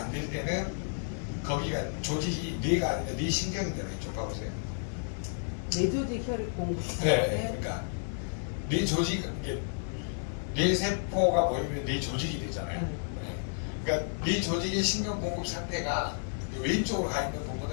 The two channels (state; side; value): silent; right; digital silence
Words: 될 때는 거기가 조직이 뇌가 아니라 뇌 신경이잖아요. 이쪽 봐보세요. 뇌조직 혈액 공급. 네, 그러니까 뇌 조직 이게 뇌 세포가 모이면 뇌 조직이 되잖아요. 네. 그러니까 뇌 조직의 신경 공급 상태가 왼쪽으로 가 있는